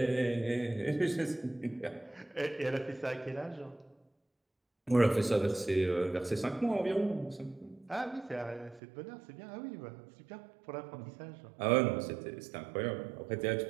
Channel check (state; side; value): drops out; left; at 8.8 s